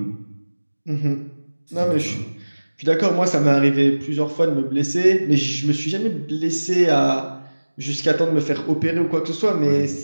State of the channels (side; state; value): both; inverted; correlation -1.00